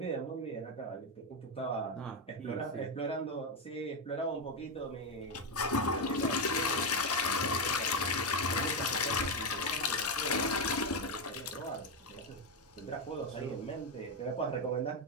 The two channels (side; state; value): both; normal; correlation 0.07